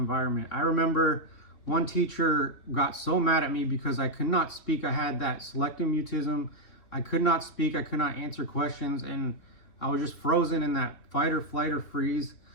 I remember one teacher got so mad at me because I could not speak. I had that selective mutism. I could not speak. I could not answer questions. And I was just frozen in that fight or flight or freeze.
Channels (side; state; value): right; late; 3.5 ms